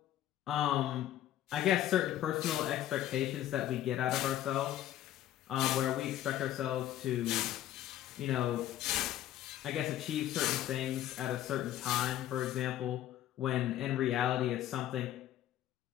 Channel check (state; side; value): quieter; right; 12.7 dB